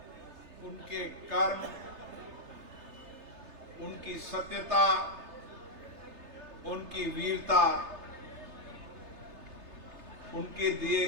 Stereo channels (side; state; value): left; late; 3.3 ms